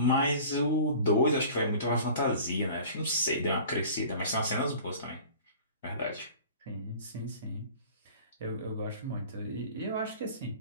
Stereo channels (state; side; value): inverted; both; correlation -0.43